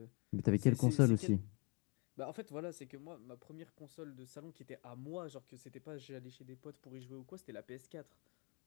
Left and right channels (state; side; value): quieter; right; 33.5 dB